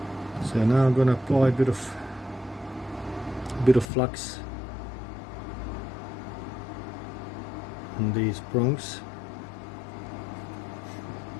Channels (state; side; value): drops out; right; at 3.9 s